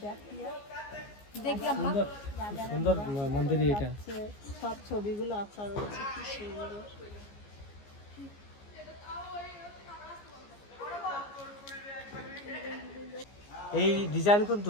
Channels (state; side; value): late; right; 14 ms